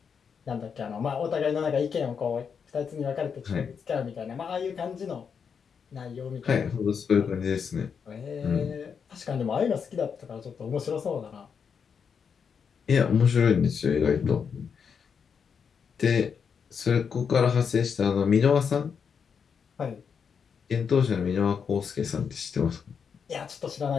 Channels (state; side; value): quieter; right; 6.6 dB